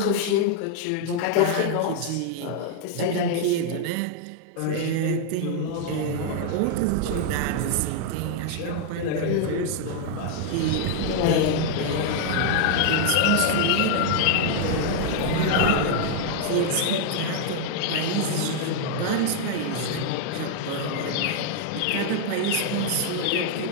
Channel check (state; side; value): different; both; correlation 0.00